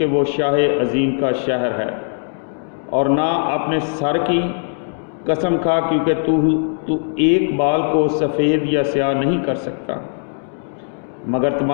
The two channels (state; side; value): silent; right; 66 dB below the other